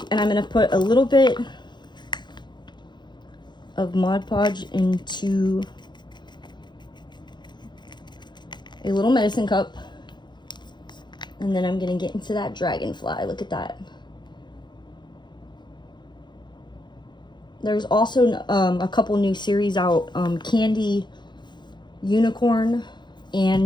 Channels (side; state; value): right; late; 0.21 ms